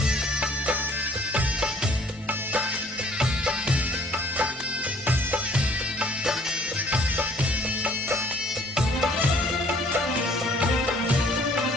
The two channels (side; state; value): both; normal; correlation 0.58